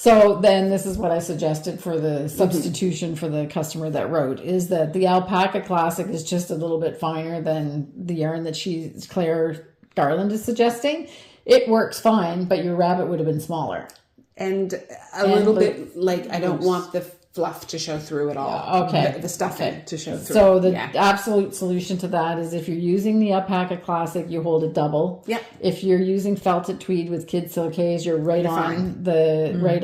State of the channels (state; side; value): identical; both; correlation 1.00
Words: then this is what I suggested for the substitution for the customer that wrote, is that the alpaca classic is just a little bit finer than the yarn that Claire Garland is suggesting. It works fine, but your rabbit would have been smaller. And a little bit, like, I don't want the fluff to show through at all. The stuffing to show through. So the absolute solution to that is if you're using the alpaca classic, you hold it double. Yeah. If you're using felted tweed with kid silkies, you're right